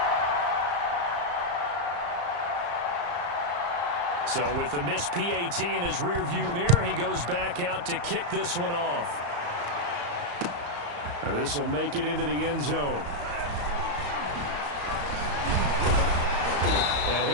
So with the missed PAT in his rearview mirror, he goes back out to kick this one off. Now this will make it into the end zone. And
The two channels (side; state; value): left; late; 34 ms